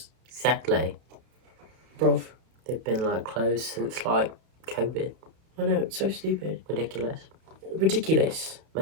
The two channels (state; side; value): late; left; 32 ms